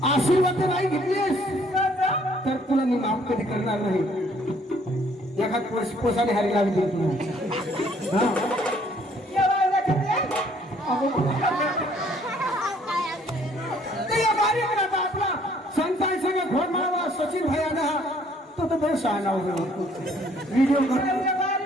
आशीर्वाद नाही घेतलीस तर तुला मी माफ कधी करणार नाही. एखाद पोसाने हारी लागली तुला. आपला संतान सगळं घोड माळवा सचिन भाई आला तो तर बरं शहाणा व्हिडिओ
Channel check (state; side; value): normal; both; correlation 0.62